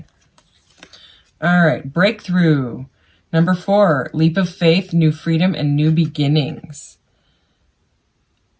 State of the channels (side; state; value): both; identical; correlation 1.00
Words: All right. Breakthrough. Number 4. Leap of faith, new freedom, and new beginnings.